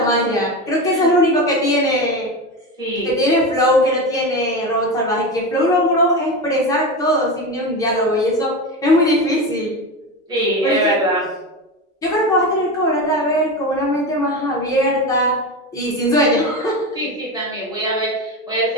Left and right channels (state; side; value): normal; both; correlation 0.22